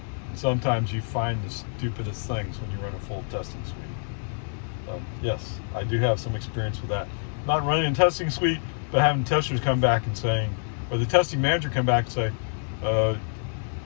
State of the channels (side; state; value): right; silent; digital silence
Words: Sometimes you find the stupidest things when you run a full testing suite. Yes, I do have some experience with that. Not running a testing suite, but having testers come back and saying, or the testing manager come back and say,